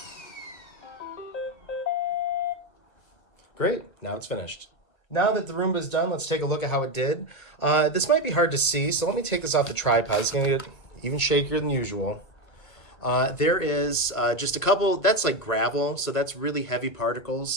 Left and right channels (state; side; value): late; right; 1.1 ms